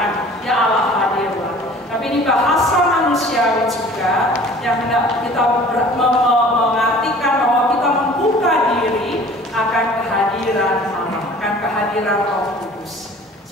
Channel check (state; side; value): normal; both; correlation 0.48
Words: ya Allah hadirlah. Tapi ini bahasa manusiawi juga yang hendak kita mengartikan bahwa kita membuka diri akan kehadiran Allah, akan kehadiran Roh Kudus.